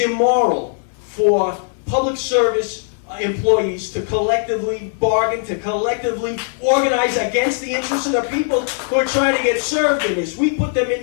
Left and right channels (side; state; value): right; silent; 59 dB below the other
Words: for public service employees to collectively bargain, to collectively organize against the interests of the people who are trying to get served in this. We put them in